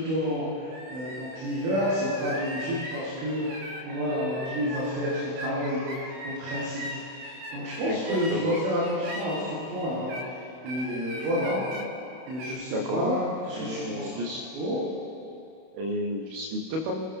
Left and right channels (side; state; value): left; late; 31 ms